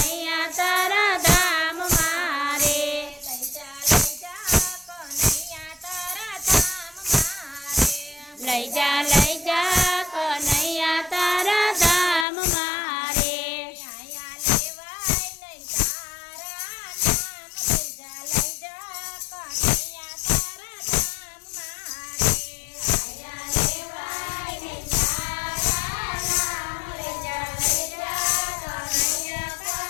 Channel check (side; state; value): right; drops out; at 12.2 s